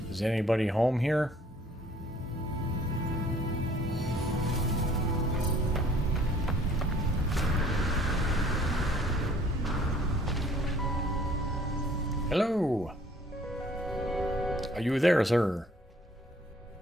Is anybody home here? Hello? Are you there, sir?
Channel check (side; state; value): both; normal; correlation 0.57